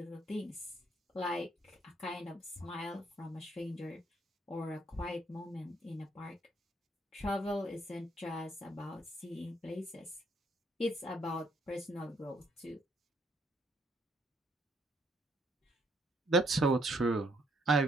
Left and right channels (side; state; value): both; normal; correlation 0.70